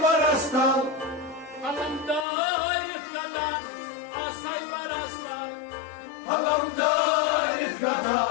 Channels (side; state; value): right; drops out; at 2.2 s